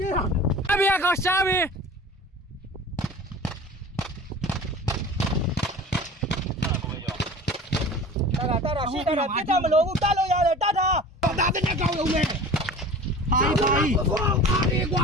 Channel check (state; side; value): normal; both; correlation 0.40